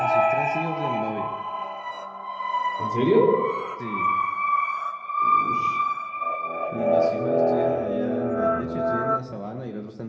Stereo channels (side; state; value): both; identical; correlation 1.00